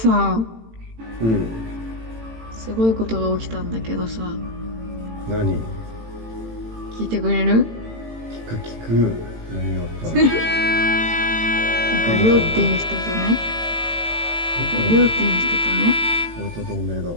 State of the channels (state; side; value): late; left; 18 ms